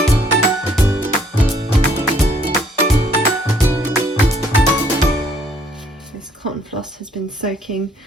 Cotton floss has been soaking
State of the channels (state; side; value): normal; both; correlation 0.64